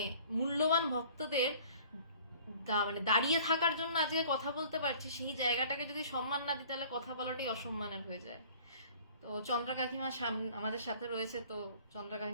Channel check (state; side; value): inverted; both; correlation -0.50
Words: মূল্যবান ভক্তদের মানে দাঁড়িয়ে থাকার জন্য আজকে কথা বলতে পারছি, সেই জায়গাটাকে যদি সম্মান না দিই তাহলে কথা বলাটাই অসম্মানের হয়ে যায়। তো চন্দ্রা কাকিমা আমাদের সাথে রয়েছে, তো চন্দ্রা